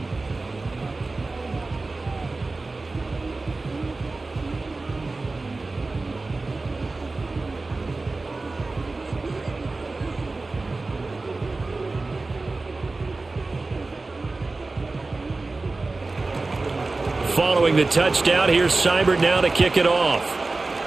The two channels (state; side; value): quieter; left; 3.4 dB